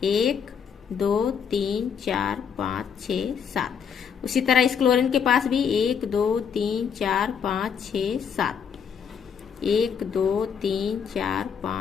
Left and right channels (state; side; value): quieter; right; 7.1 dB